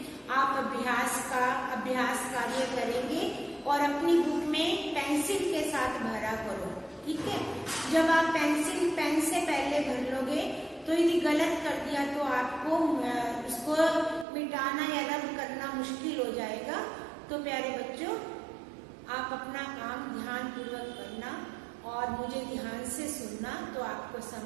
आप अभ्यास कार्य करेंगे और अपनी बुक में पेंसिल के साथ भरा करो, ठीक है? जब आप पेंसिल पेन से पहले भर लोगे तो यदि गलत कर दिया तो आपको उसको मिटाना या रद्द करना मुश्किल हो जाएगा। तो प्यारे बच्चों, आप अपना काम ध्यान पूर्वक करना और मुझे ध्यान से सुनना तो आपको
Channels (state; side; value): drops out; left; at 14.2 s